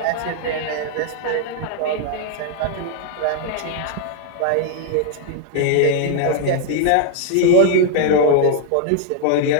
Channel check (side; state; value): both; different; correlation 0.00